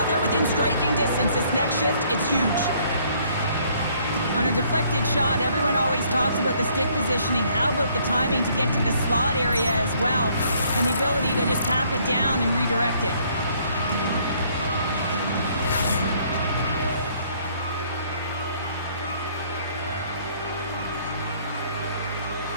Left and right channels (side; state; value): both; inverted; correlation -0.64